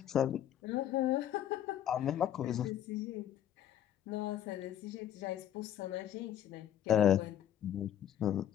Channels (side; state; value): right; quieter; 10.8 dB